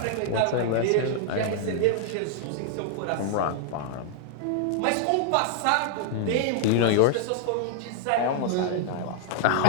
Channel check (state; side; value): different; both; correlation -0.01